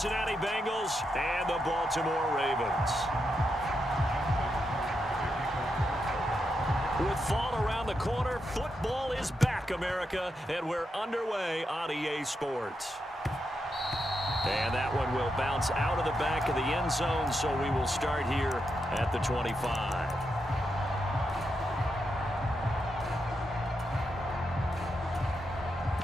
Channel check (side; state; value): both; normal; correlation 0.84